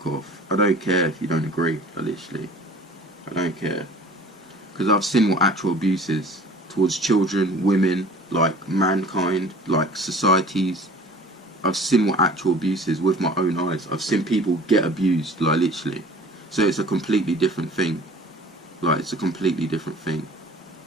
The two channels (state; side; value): normal; both; correlation 0.46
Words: off. I don't care if you don't agree. Like literally, I don't care. Because I've seen what actual abuse is towards children, women, like mankind, like societies. I've seen what actual abuse is with my own eyes. I've seen people get abused, like literally. So it's a completely different thing. Like, it's a completely different thing.